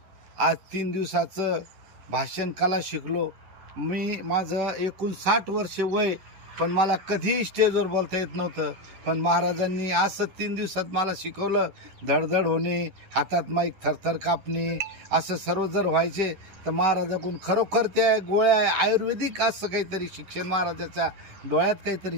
आज 3 दिवसाचं भाषण कला शिकलो. माझं एकूण 60 वर्ष वय, पण मला कधीही स्टेजवर बोलता येत नव्हतं. पण महाराजांनी असं 3 दिवसात मला शिकवलं. धडधड होणे, हातात माईक थरथर कापणे, असं सर्व जर व्हायचे तर महाराजाकडून खरोखर त्या गोळ्या आयुर्वेदिक असं काहीतरी शिक्षण, महाराजाच्या डोळ्यात काहीतरी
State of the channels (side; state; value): left; late; 10 ms